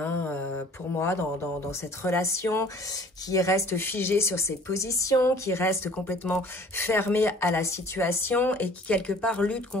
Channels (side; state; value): both; normal; correlation 0.51